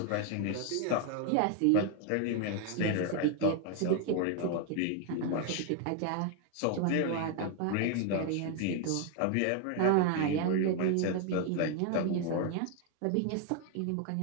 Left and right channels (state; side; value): different; both; correlation 0.01